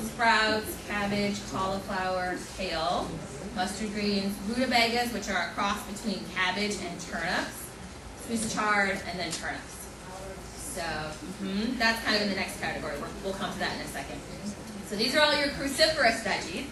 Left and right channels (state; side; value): identical; both; correlation 1.00